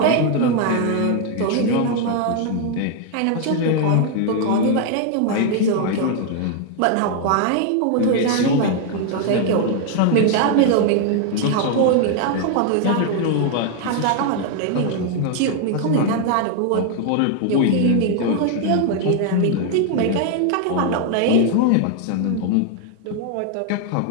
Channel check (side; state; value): both; different; correlation 0.00